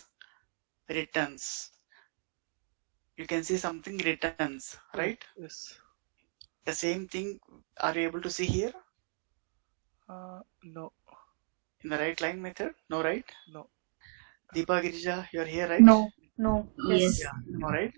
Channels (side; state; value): left; silent; 56 dB below the other